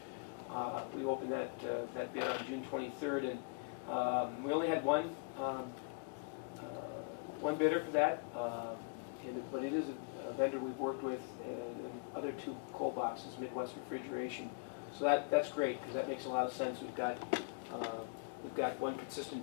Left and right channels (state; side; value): quieter; right; 33.9 dB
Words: we opened that bid on June 23rd, and we only had one bidder for that, but it is a vendor we've worked with in other two cold boxes, Midwest Refrigeration. So that's great, because that makes a lot of sense. We've got one consistent